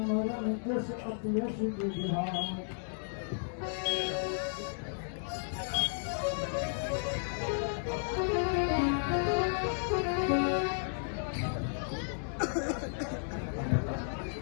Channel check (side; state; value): right; silent; digital silence